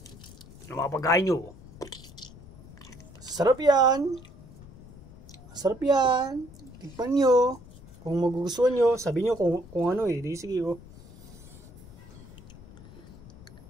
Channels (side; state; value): left; noise; rumble, 19 dB below the sound